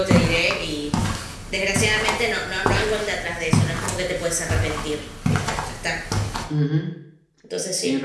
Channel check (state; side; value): identical; both; correlation 1.00